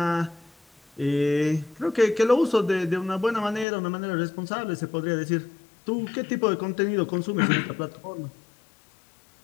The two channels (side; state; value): right; drops out; at 3.7 s